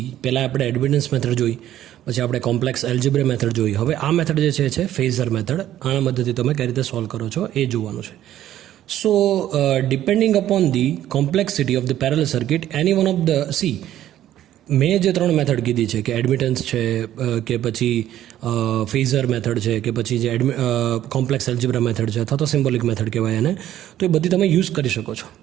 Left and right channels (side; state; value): left; quieter; 12.4 dB